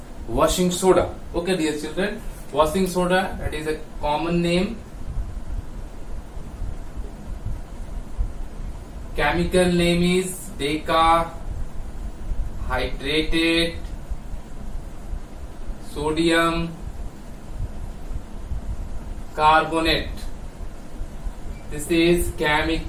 washing soda. Okay, dear children, washing soda, that is a common name. Chemical name is decahydrated sodium carbonate. This is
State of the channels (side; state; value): both; identical; correlation 1.00